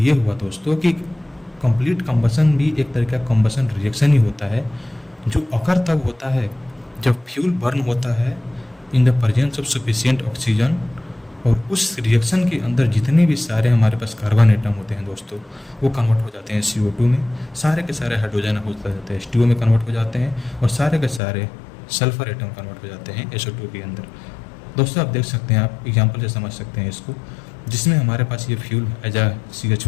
हुआ दोस्तों कि कंप्लीट कंबशन भी एक तरह का कंबशन रिएक्शन ही होता है, जो अकर तब होता है जब फ्यूल बर्न होता है in the presence of sufficient oxygen, और उस रिएक्शन के अंदर जितने भी सारे हमारे पास कार्बन एटम होते हैं दोस्तों, वो कन्वर्ट हो जाते हैं CO2 में, सारे के सारे हाइड्रोजन हो जाते हैं H2O में कन्वर्ट हो जाते हैं, और सारे के सारे सल्फर एटम कन्वर्ट हो जाते हैं SO2 के अंदर। दोस्तों आप देख सकते हैं, आप एग्जांपल से समझ सकते हैं इसको, जिसमें हमारे पास ये फ्यूल एज आ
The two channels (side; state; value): right; drops out; at 21.2 s